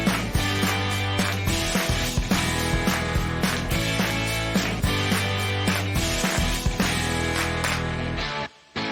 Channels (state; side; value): identical; both; correlation 1.00